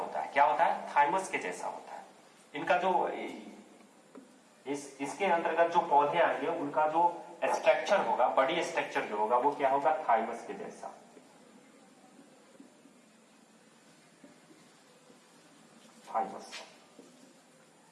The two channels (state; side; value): identical; both; correlation 1.00